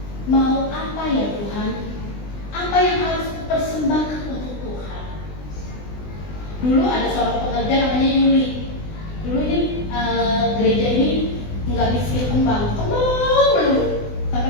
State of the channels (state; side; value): late; right; 20 ms